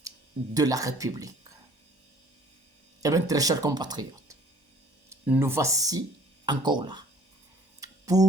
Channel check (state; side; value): late; left; 1.1 ms